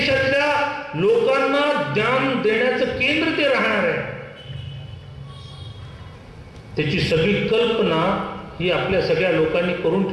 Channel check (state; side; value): identical; both; correlation 1.00